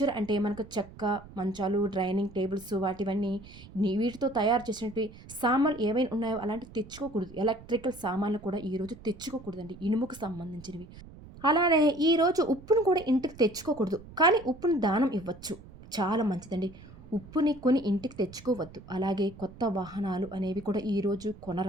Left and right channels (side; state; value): right; noise; rumble, 18 dB below the sound